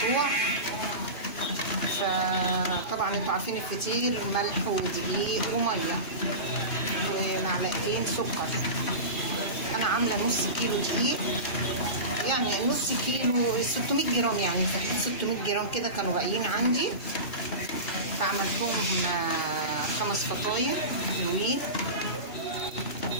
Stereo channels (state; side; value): late; right; 1.9 ms